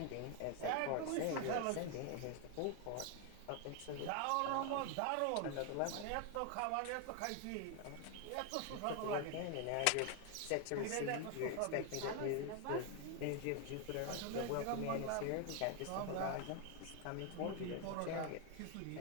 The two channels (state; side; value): different; both; correlation 0.01